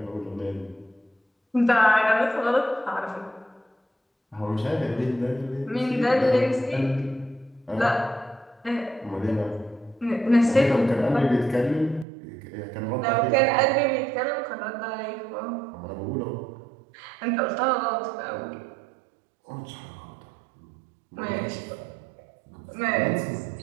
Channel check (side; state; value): left; drops out; at 12.1 s